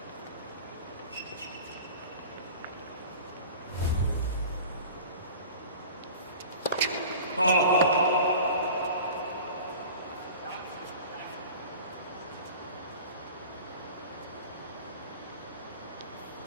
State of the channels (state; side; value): inverted; both; correlation -0.39